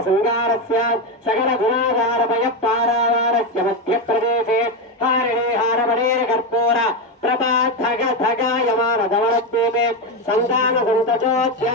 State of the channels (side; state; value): both; normal; correlation 0.12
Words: సంగారస్య సకల గుణాధారపయ పారావారస్య మధ్యప్రదేశే హారిణే హారమణేర కర్పూర ప్రభా ధగ ధగాయమాన ధవళద్వీపే సంతాన